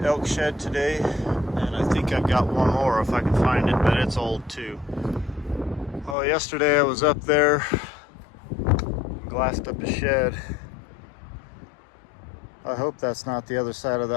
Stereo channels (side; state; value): right; drops out; at 6.2 s